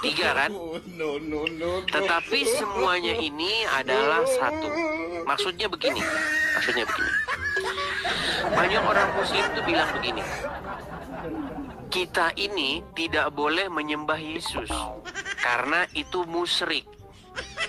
3 kan? Tetapi semuanya ini adalah 1. Maksudnya begini. Banyak orang Muslim tuh bilang begini, kita ini tidak boleh menyembah Yesus karena itu musyrik.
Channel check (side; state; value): both; identical; correlation 1.00